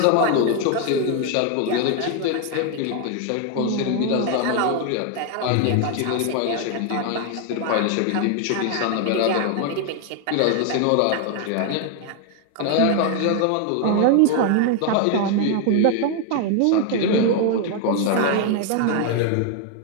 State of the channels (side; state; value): both; different; correlation 0.01